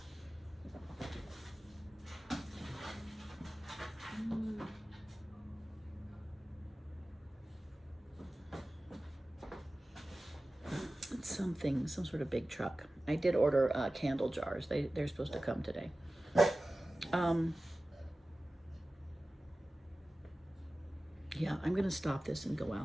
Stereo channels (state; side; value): normal; both; correlation 0.96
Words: It's something, some sort of big truck. I did order candle jars. They're supposed to come today. Yeah, I'm going to stop this and go